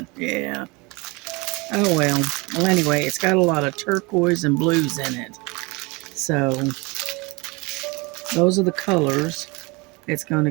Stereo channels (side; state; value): left; quieter; 26.7 dB